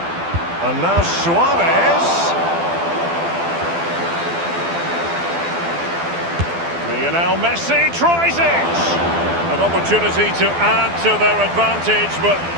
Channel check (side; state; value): left; late; 12 ms